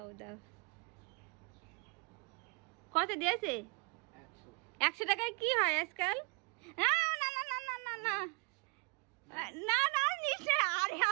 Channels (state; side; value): quieter; left; 31.6 dB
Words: দাও। কত দিয়েছে? 100 টাকায় কি হয় আজকাল? না না না না না না না না না নিশ্চয়। আরে